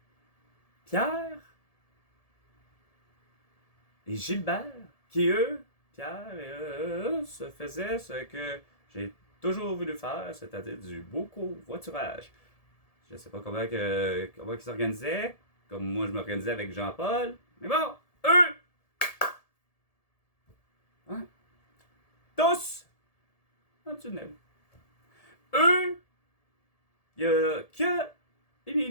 Pierre et Gilbert, qui eux, Pierre et eux, se faisaient ce que j'ai toujours voulu faire, c'est-à-dire du beau covoiturage. Je ne sais pas comment ils s'organisaient, comme moi je m'organisais avec Jean-Paul, mais bon, eux, hein, tous, dans le tunnel. Eux, il n'y a que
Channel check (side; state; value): right; late; 1.7 ms